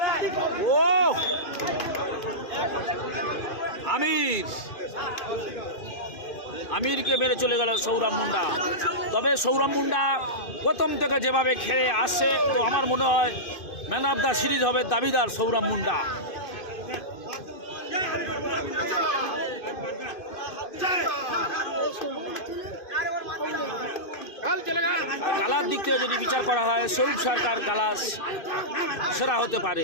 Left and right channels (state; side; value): late; right; 2.5 ms